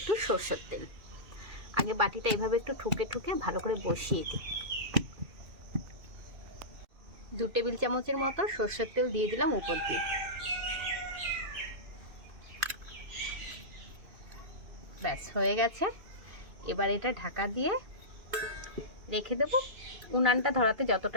সরষের তেল। আগে বাটিটা এইভাবে একটু ঠুকে ভালো করে বসিয়ে দিই। 2 টেবিল চামচের মতো সরষের তেল দিয়ে দিলাম উপর দিয়ে। ব্যাস হয়ে গেছে। এবার এটা ঢাকা দিয়ে রেখে দেবো। উনানটা ধরাতে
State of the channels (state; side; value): late; left; 2.6 ms